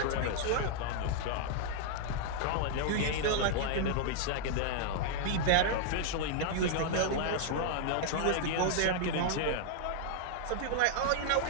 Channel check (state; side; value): different; both; correlation -0.01